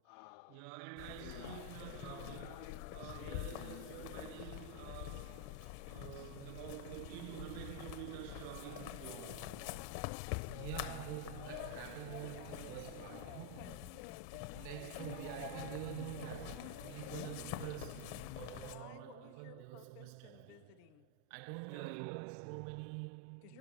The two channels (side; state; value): both; different; correlation 0.00